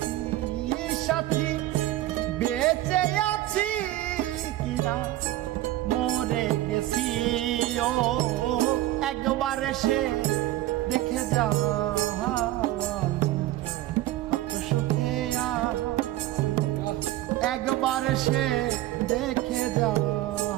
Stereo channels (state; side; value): quieter; left; 15.5 dB